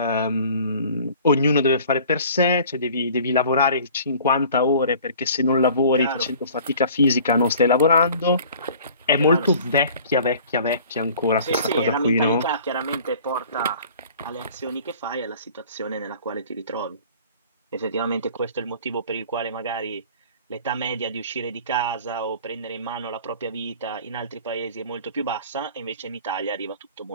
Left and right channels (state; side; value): inverted; both; correlation -0.48